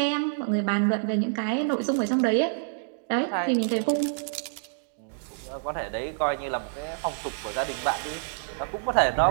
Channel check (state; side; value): silent; left; digital silence